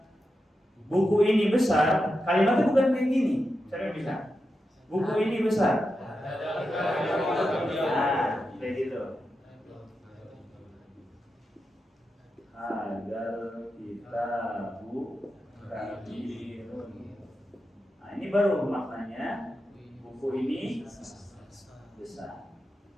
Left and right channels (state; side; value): normal; both; correlation 0.89